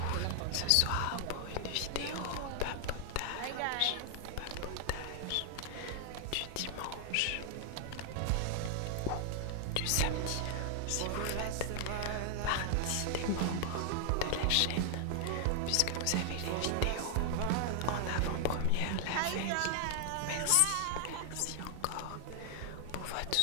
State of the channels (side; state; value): both; different; correlation 0.00